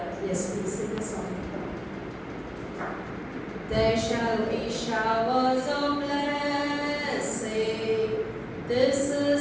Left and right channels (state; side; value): identical; both; correlation 1.00